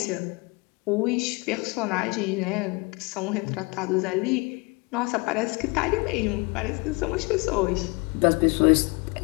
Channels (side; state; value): right; quieter; 28.3 dB